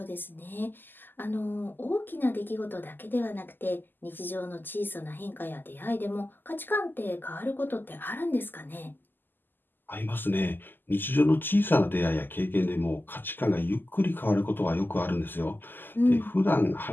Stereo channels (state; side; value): late; right; 0.091 ms